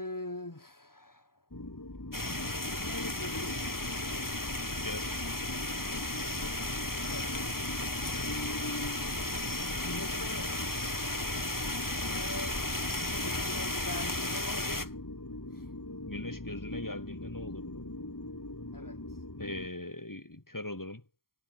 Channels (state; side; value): late; right; 0.93 ms